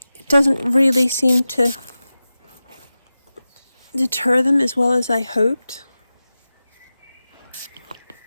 it doesn't really seem to deter them as well as I hoped.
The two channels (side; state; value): both; inverted; correlation -0.95